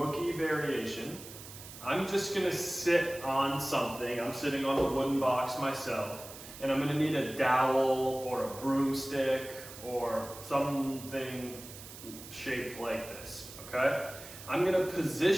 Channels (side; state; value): right; noise; hiss, 14 dB below the sound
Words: variation. I'm just going to sit on something. I'm sitting on the wooden box myself, and I'm going to need a dowel or a broomstick or something shaped like this, okay? I'm going to